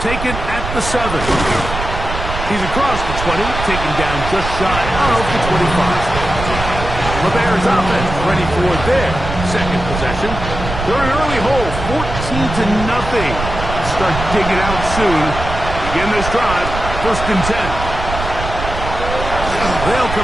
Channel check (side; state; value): right; noise; rumble, 6 dB below the sound